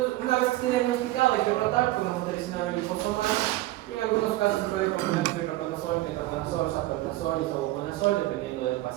una vez que esté diagnosticado, hay que tratar con amoxicilina liposomal y en algunos casos se puede combinar con itraconazol, ketoconazol, sapoconazol y sabuconazol, dependiendo del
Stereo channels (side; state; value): left; quieter; 17.2 dB